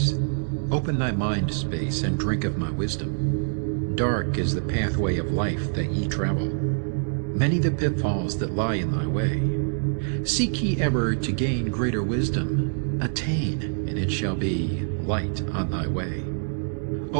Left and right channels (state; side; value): silent; left; digital silence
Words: Open thy mind space and drink of my wisdom. Dark is the pathway of life that ye travel. Many the pitfalls that lie in thy way. Seek ye ever to gain greater wisdom. Attain, and it shall be light on thy way.